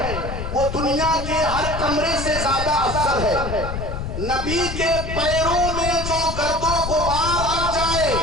وہ دنیا کے ہر کمرے سے زیادہ افضل ہے۔ نبی کے پیروں میں جو گرد و غبار لگ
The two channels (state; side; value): noise; left; rumble, 5 dB below the sound